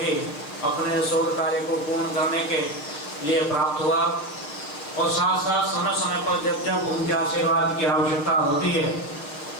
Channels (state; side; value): late; right; 6.8 ms